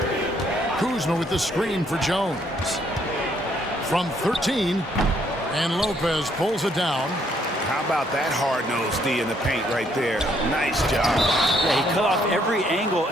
Kuzma with the screen for Jones. From 13, and Lopez pulls it down. How about that hard-nosed D in the paint right there? Nice job. Yeah, he cut off every angle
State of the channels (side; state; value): both; normal; correlation 0.69